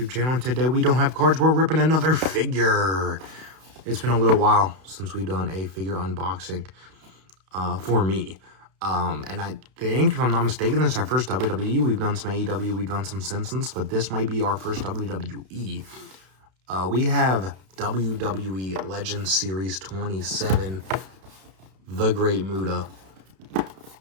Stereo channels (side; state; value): left; late; 32 ms